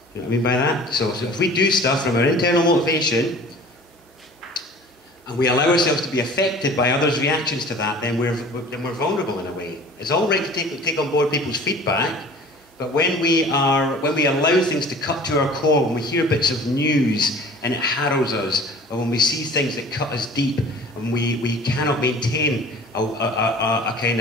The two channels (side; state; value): both; normal; correlation 0.45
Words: You know what I mean by that? So if we do stuff from our internal motivation, and we allow ourselves to be affected by others' reactions to that, then we're vulnerable in a way. It's all right to take on board people's feedback, but when we allow things to cut to our core, when we hear bits of news and it harrows us, or when we see things that cut us deep, and we cannot maintain a kind